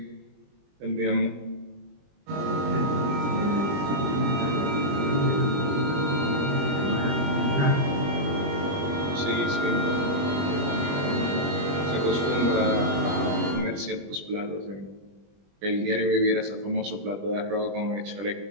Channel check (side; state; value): left; late; 21 ms